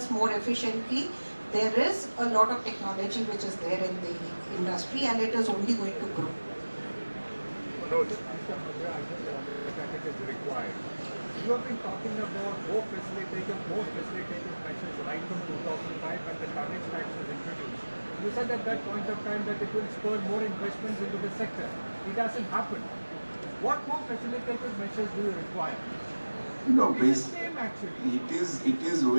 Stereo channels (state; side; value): inverted; both; correlation -1.00